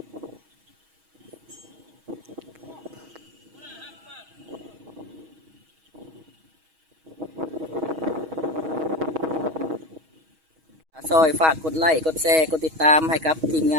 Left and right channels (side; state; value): left; late; 6.3 ms